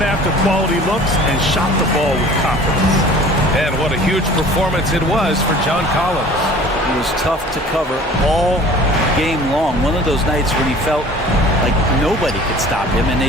after quality looks and shot the ball with confidence. And what a huge performance it was for John Collins. It was tough to cover all game long. One of those nights when he felt like nobody could stop him, and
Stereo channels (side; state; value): both; normal; correlation 0.46